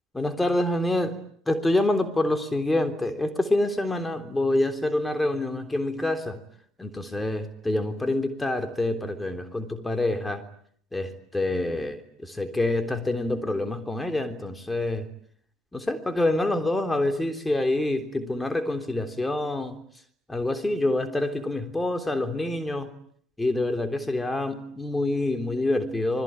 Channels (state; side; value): normal; both; correlation 0.88